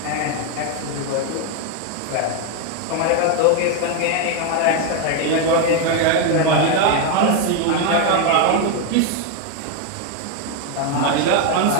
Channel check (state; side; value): different; both; correlation 0.01